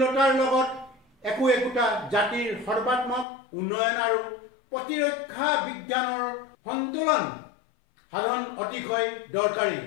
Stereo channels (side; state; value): right; drops out; at 3.2 s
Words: লগত একোটা জাতিৰ সৰ্বাত্মক উন্নয়ন আৰু প্ৰতিৰক্ষা বিজ্ঞানৰ সন্তুলন সাধন অতিশয় দৰকাৰী,